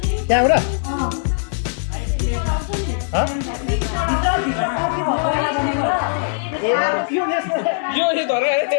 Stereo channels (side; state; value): right; silent; digital silence